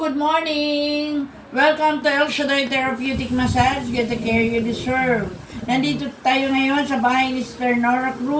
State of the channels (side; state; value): both; identical; correlation 1.00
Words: morning! Welcome to El Shaddai Therapeutic Massage. Get the care you deserve. Nandito tayo ngayon sa bahay ni Sister Nora